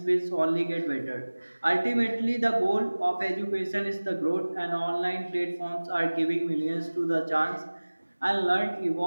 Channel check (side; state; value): both; inverted; correlation -1.00